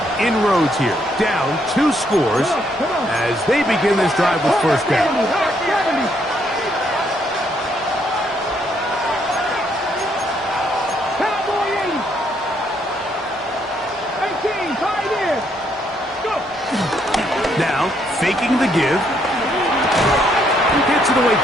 inroads here. Down 2 scores as they begin this drive with first down. Now, faking the give. Gets it away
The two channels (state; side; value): normal; both; correlation 0.72